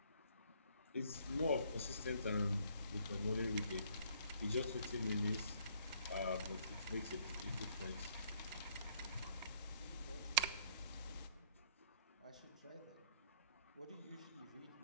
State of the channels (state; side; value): inverted; both; correlation -0.63